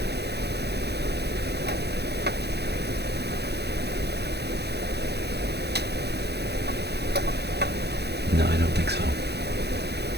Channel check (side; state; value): left; late; 0.48 ms